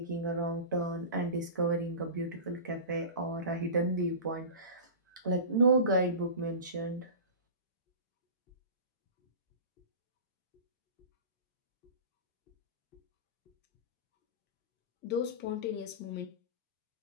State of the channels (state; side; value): inverted; both; correlation -0.32